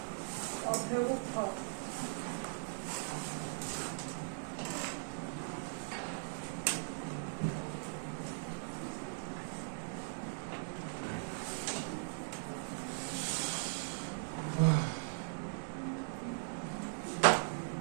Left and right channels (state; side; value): silent; left; digital silence